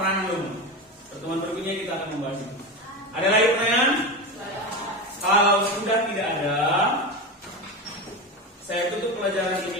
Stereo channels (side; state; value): both; normal; correlation 0.21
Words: lumut. Pertemuan berikutnya kita akan membahas itu. Ada lagi pertanyaan? Kalau sudah tidak ada, saya tutup pelajaran